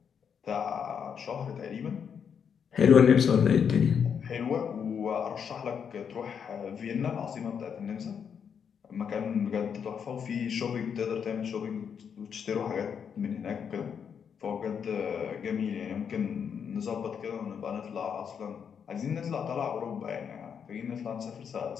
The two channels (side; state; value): right; quieter; 7.3 dB